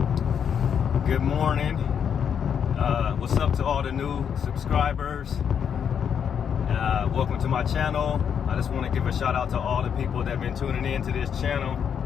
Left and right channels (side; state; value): right; quieter; 7.8 dB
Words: Good morning. What's up to all the new subscribers? Welcome to my channel. I just want to give a shout out to all the people that have been tuning in to this channel.